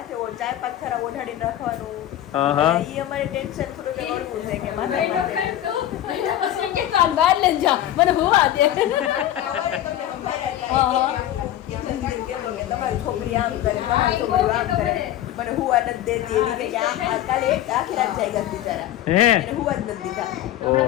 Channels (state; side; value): quieter; right; 12.7 dB